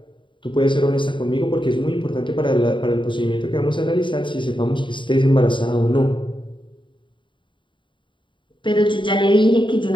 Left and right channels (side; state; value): right; late; 0.23 ms